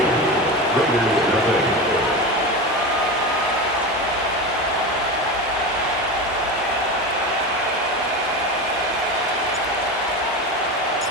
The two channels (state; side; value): normal; both; correlation 0.23